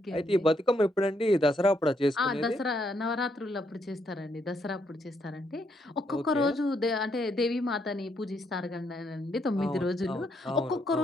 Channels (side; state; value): both; normal; correlation 0.75